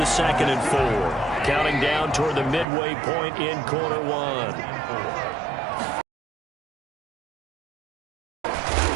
2nd and 4. Counting down toward the midway point in quarter 1.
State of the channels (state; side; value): drops out; left; at 2.7 s